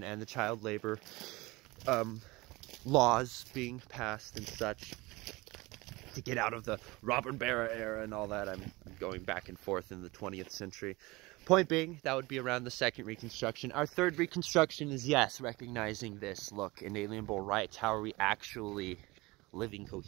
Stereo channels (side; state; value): left; quieter; 22.6 dB